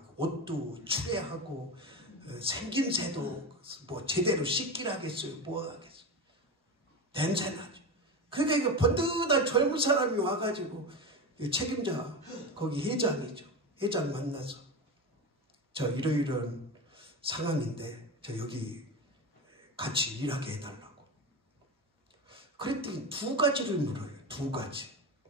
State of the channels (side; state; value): both; normal; correlation 0.22